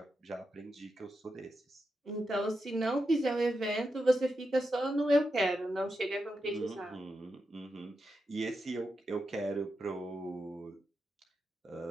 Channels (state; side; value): normal; both; correlation 0.87